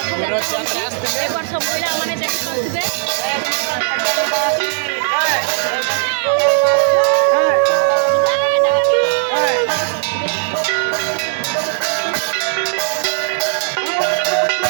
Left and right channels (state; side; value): silent; left; digital silence